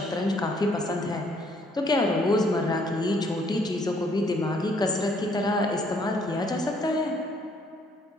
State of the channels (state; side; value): normal; both; correlation 0.66